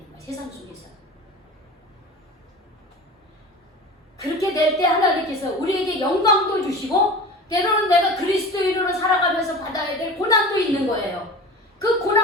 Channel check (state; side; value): normal; both; correlation 0.35